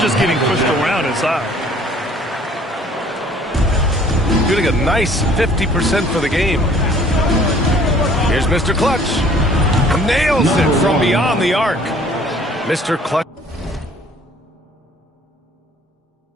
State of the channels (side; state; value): both; normal; correlation 0.55